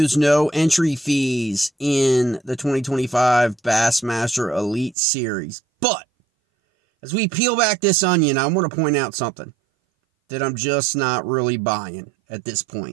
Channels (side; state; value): left; drops out; at 5.0 s